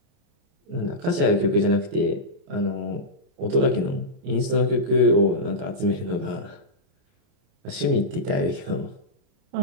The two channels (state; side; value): late; left; 29 ms